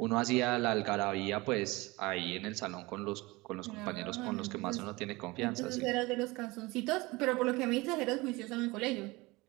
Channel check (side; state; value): left; quieter; 22.6 dB